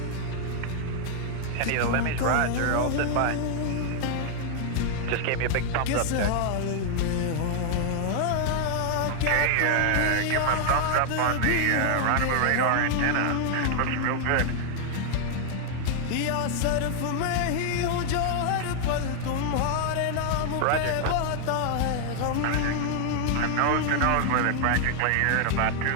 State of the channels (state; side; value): different; both; correlation 0.00